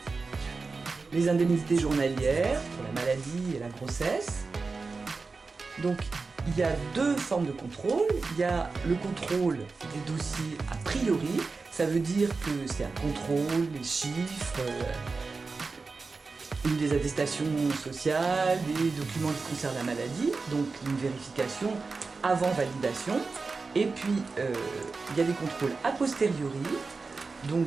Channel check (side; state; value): left; quieter; 4.2 dB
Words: les indemnités journalières pour la maladie et la grossesse. Donc, il y a deux formes de contrôle. Il y a le contrôle des dossiers a priori. Ça veut dire que c'est un contrôle, les chiffres, des attestations sociales, des documents qui concernent la maladie, donc une vérification avant validation. Et puis, il y a des contrôles a posteriori,